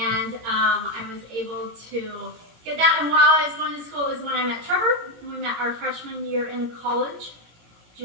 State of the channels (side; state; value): left; late; 17 ms